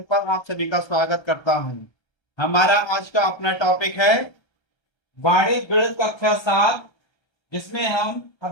पर आप सभी का स्वागत करता हूं। हमारा आज का अपना टॉपिक है वाणिज्य गणित कक्षा 7, जिसमें हम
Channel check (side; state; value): right; late; 1.3 ms